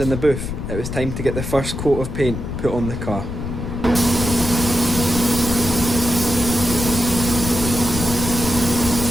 the booth, it was time to get the first coat of paint put on the car.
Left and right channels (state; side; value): noise; left; rumble, 5 dB below the sound